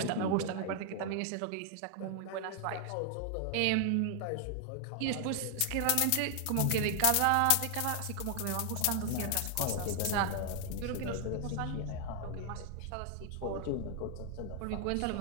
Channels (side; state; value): both; different; correlation 0.00